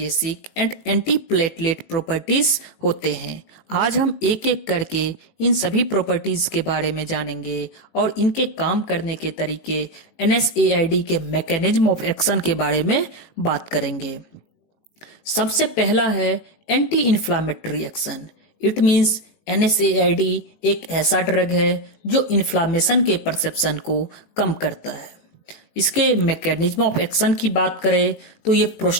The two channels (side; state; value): right; late; 18 ms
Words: and anti platelet properties होते हैं। आज हम एक एक करके इन सभी प्रॉपर्टीज के बारे में जानेंगे और इनके काम करने के तरीके, एनएसएआईडी के मैकेनिज्म ऑफ एक्शन के बारे में बात करेंगे। सबसे पहला है anti inflammatory action. It means NSAID एक ऐसा ड्रग है जो इन्फ्लामेशन के परसेप्शन को कम करता है। इसके मैकेनिज्म ऑफ एक्शन की बात करें तो ये